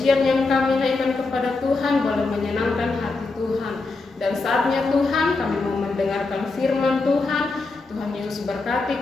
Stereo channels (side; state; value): right; quieter; 3.7 dB